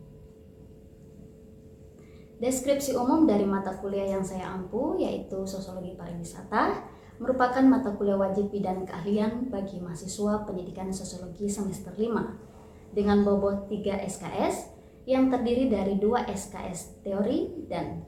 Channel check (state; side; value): identical; both; correlation 1.00